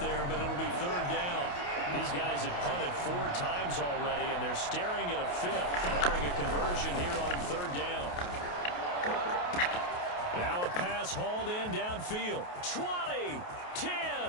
there, but it'll be third down. These guys have punted 4 times already, and they're staring at a 5th, barring a conversion here on third down. Now a pass hauled in downfield. 20,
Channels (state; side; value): late; right; 28 ms